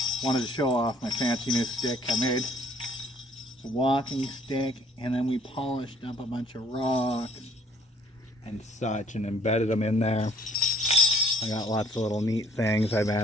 wanted to show off my fancy new stick I made. It's a walking stick, and then we polished up a bunch of rocks and such and embedded them in there. I got lots of little neat things I've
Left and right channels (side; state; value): both; normal; correlation 0.60